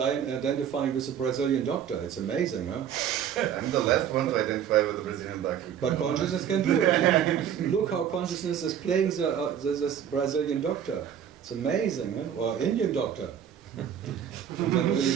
with the Brazilian doctor. It's amazing, huh? I'm the last one to identify with the Brazilian doctor. But consciousness can do it. Look how consciousness is playing this Brazilian doctor. It's amazing, huh? Or Indian doctor. And then really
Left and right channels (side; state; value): left; quieter; 9.1 dB